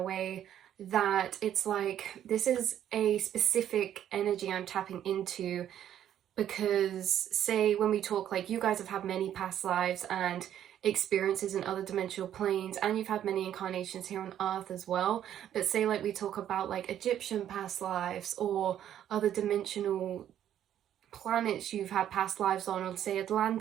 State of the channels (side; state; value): left; quieter; 10.7 dB